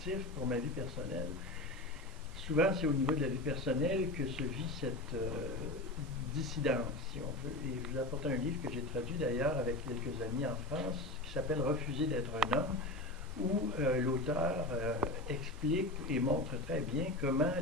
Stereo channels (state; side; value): normal; both; correlation 0.26